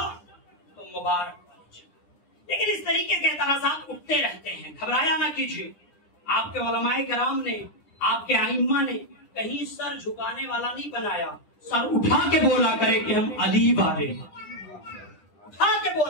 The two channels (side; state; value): right; late; 9.9 ms